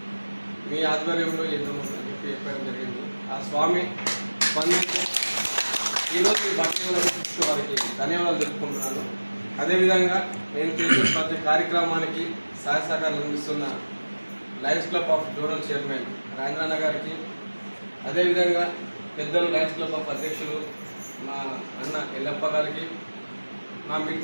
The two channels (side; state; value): both; inverted; correlation -1.00